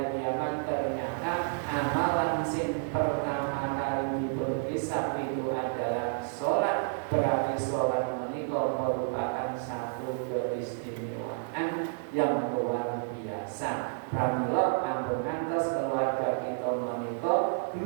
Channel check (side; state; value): left; silent; digital silence